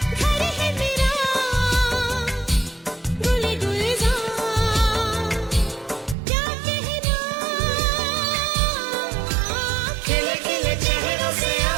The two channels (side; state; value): left; drops out; at 6.2 s